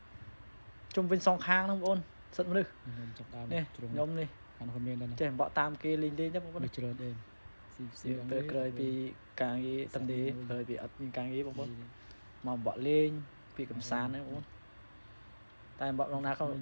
ជុំវិញសងខាងហ្នឹងបងប្អូនសិតមនុស្សនេះខ្ញុំនេះអានោះមានដែរចេះបកតាមគេលេងទេបងប្អូនច្រើនអែមស៊ីពេលក្រោយពីការងារតំទេក្រោយពីអត់មានការងារបងប្អូនមកបកលេងពីកំសាន្តហ្នឹងបងប្អូនតែបកក្នុងណាក៏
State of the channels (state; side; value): inverted; both; correlation -1.00